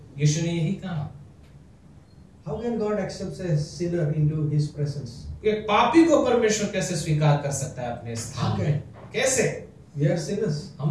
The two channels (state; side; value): identical; both; correlation 1.00